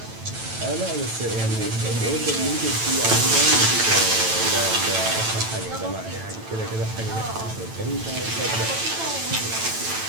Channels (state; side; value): late; left; 9.0 ms